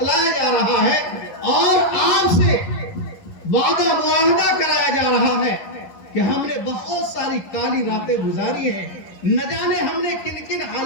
جا رہا ہے، اور آپ سے وعدہ معاہدہ کرایا جا رہا ہے کہ ہم نے بہت ساری کالی راتیں گزاری ہیں. نہ جانے ہم نے کن کن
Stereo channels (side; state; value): right; late; 11 ms